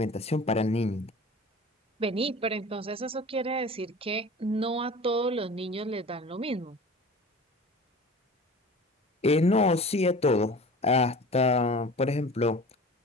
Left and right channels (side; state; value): both; normal; correlation 0.40